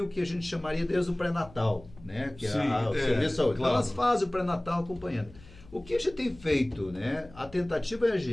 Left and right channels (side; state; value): left; noise; hum, 21 dB below the sound